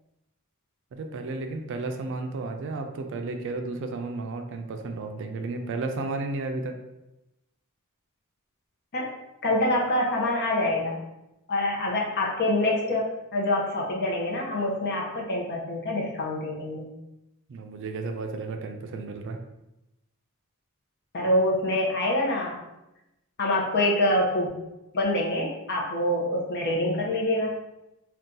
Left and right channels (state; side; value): normal; both; correlation -0.13